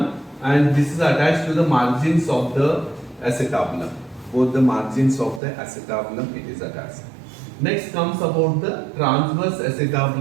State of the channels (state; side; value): drops out; left; at 5.4 s